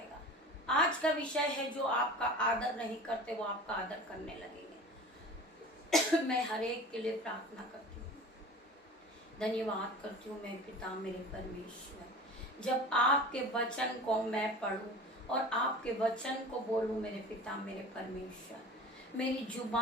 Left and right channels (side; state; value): both; normal; correlation 0.38